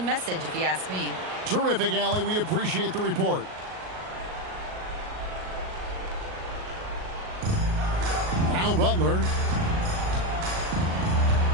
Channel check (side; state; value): left; late; 38 ms